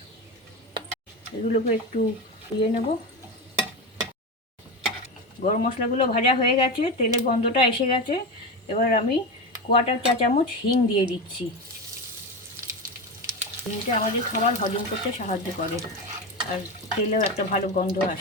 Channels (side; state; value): both; normal; correlation 0.19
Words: এগুলোকে একটু দিয়ে নেব। গরম মশলাগুলো ভাজা হয়ে গেছে, তেলের গন্ধটা এসে গেছে, এবার আমি 1/4 চা চামচ হিং দিয়ে দিচ্ছি। হিংটা আমাদের খাবার হজম করতে সাহায্য করে, আর তেলেও একটা ভালো গন্ধ